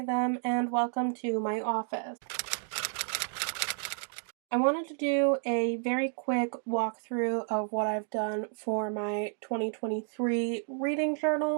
them, and welcome to my office. I wanted to do a very quick walkthrough of what I've done for my 2023 reading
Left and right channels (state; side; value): silent; left; 57 dB below the other